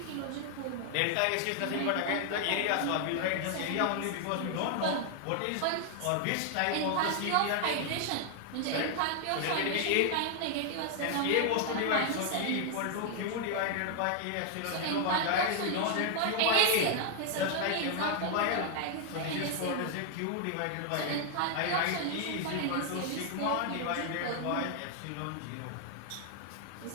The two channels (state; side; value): different; both; correlation 0.00